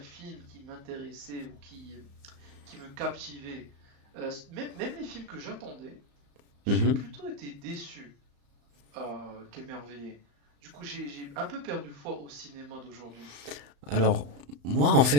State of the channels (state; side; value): late; left; 35 ms